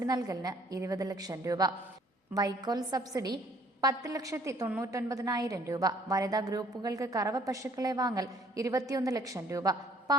നൽകലിന് 20 ലക്ഷം രൂപ. വൈക്കോൽ സബ്സിഡി 10,99,000 രൂപ. വനിതാ ഗ്രൂപ്പുകൾക്ക് കറവ പശുക്കളെ വാങ്ങൽ 21 ലക്ഷം രൂപ.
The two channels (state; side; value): normal; both; correlation 0.59